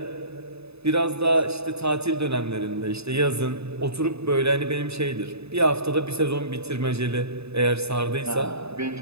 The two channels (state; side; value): late; left; 0.79 ms